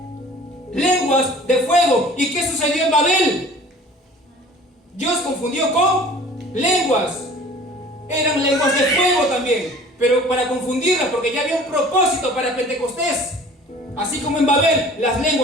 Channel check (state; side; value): normal; both; correlation 0.47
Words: lenguas de fuego. ¿Y qué sucedió en Babel? Dios confundió con lenguas. Eran lenguas de fuego también, pero para confundirlas, porque ya había un propósito para Pentecostés. Así como en Babel las